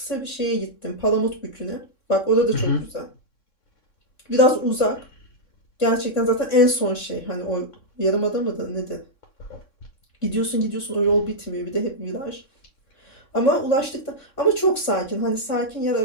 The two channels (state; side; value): late; right; 3.6 ms